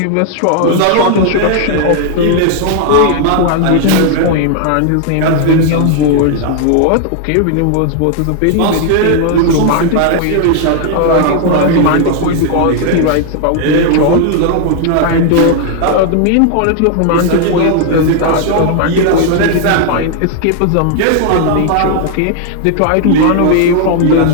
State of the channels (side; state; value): both; different; correlation 0.00